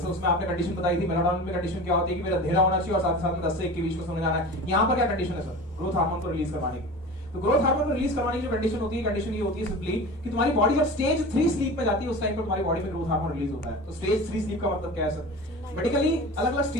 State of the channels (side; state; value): both; normal; correlation 0.34